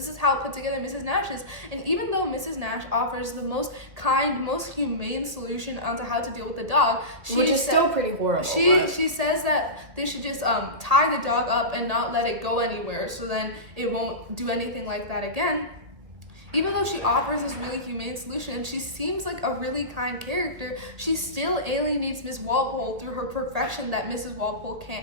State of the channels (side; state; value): left; late; 1.8 ms